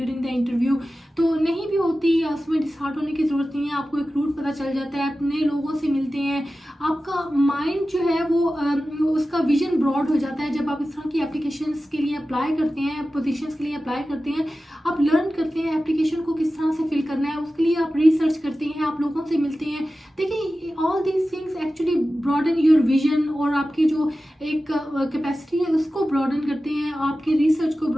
द इंटरव्यू, तो नहीं भी होती, उसमें डिसहार्ट होने की ज़रूरत नहीं है। आपको एक रूट पता चल जाता है, अपने लोगों से मिलते हैं, आपका माइंड जो है वो उसका विजन ब्रॉड हो जाता है। जब आप इस तरह की एप्लीकेशंस के लिए अप्लाई करते हैं, पोजीशंस के लिए अप्लाई करते हैं, आप लर्न करते हैं एप्लीकेशन को किस तरह से फिल करना है, उसके लिए आप रिसर्च करते हैं, आप लोगों से मिलते हैं। देखिए all these things actually broaden your vision, और आपकी जो एक कैपेसिटी है उसको ब्रॉडन करते हैं, आपके रिसर्च को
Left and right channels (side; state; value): both; normal; correlation 0.94